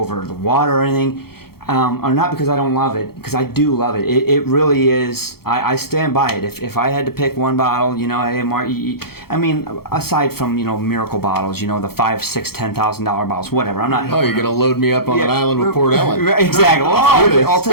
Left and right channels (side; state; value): right; late; 0.95 ms